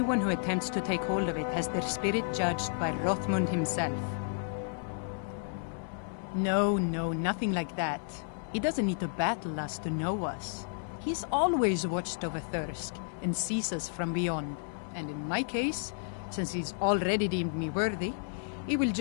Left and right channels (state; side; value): silent; right; 56 dB below the other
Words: who attempts to take hold of it has their spirit judged by Rothmund himself. No, nothing like that. He doesn't need to battle us to know us. He's always watched over Thirsk and sees us from beyond. And in my case, since he's already deemed me worthy, it will